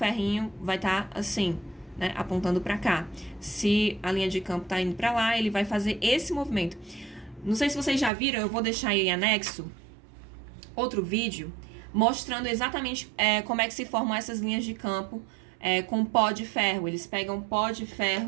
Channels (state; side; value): drops out; left; at 8.1 s